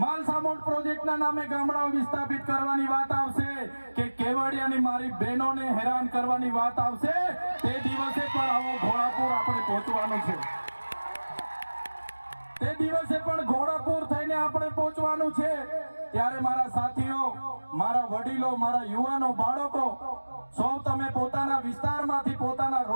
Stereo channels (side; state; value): both; inverted; correlation -1.00